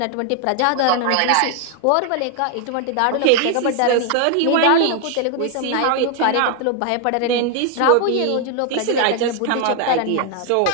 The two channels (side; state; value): both; different; correlation 0.00